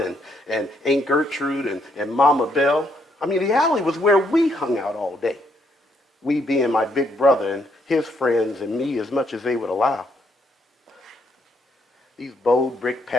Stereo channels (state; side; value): normal; both; correlation 0.73